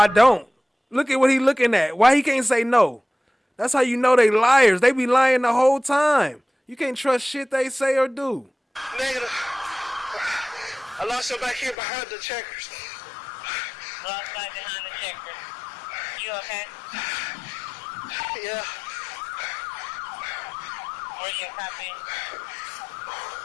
don't. Look at what he looking at. Why he can't say no? That's how you know they liars. They be lying the whole time. You can't trust shit they say or do. Negative. I lost her back here behind the checkers. Lost back behind the checkers. You okay? Yeah. Where's your copy?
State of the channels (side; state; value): right; drops out; at 11.8 s